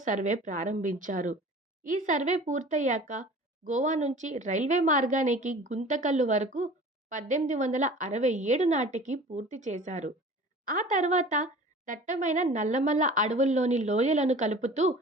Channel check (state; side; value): normal; both; correlation 0.42